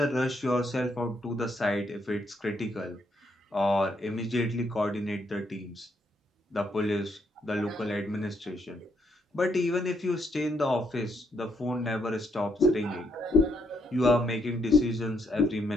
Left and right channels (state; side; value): normal; both; correlation 0.75